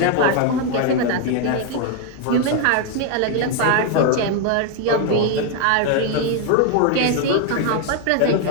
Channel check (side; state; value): both; different; correlation 0.01